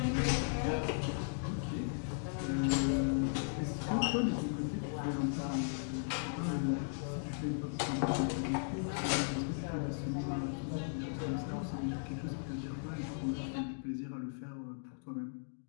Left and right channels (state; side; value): silent; right; digital silence